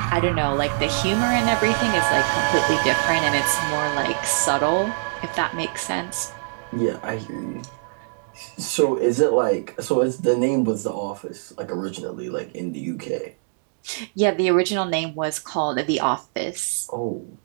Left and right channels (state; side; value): silent; left; digital silence